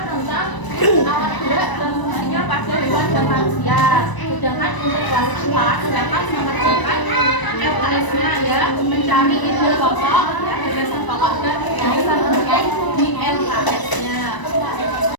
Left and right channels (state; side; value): late; right; 1.0 ms